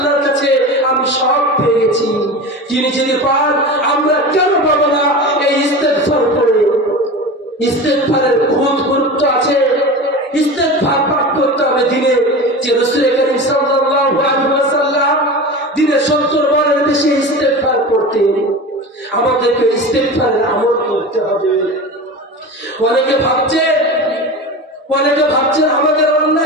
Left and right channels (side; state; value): both; normal; correlation 0.30